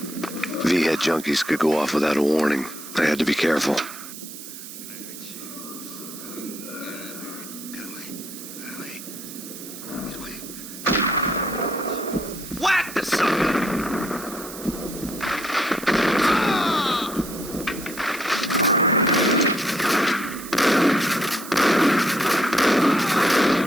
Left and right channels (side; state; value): right; noise; hiss, 12 dB below the sound